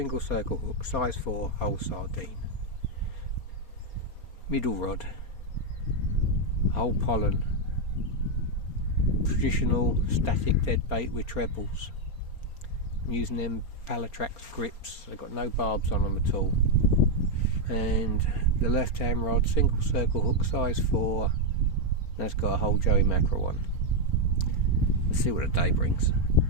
circle hook, size 4, whole sardine. Middle rod, whole pollen, traditional static dead bait with trebles. I'm using them Palatrax grips, they've got no barbs on them at all. And the left hand rod, single circle hook, size 4, that's got a whole Joey mackerel one. Let's see what the day brings.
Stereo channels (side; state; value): right; late; 4.3 ms